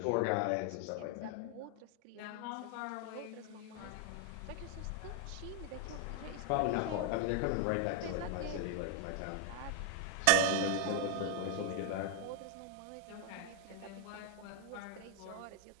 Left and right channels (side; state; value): both; different; correlation 0.00